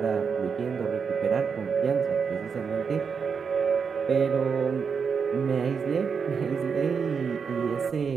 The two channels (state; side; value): quieter; left; 6.0 dB